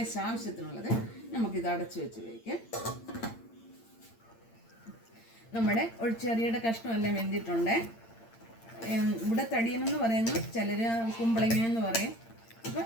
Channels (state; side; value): late; right; 8.8 ms